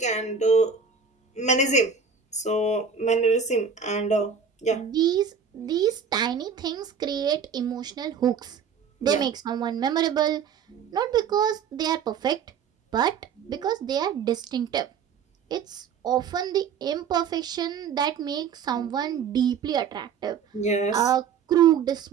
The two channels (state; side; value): quieter; left; 6.5 dB